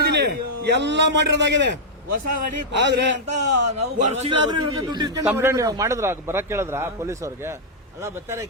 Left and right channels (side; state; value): both; normal; correlation -0.05